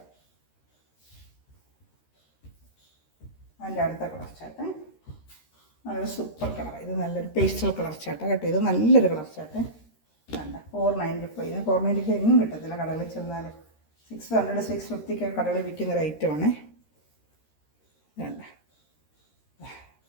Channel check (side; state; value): right; late; 13 ms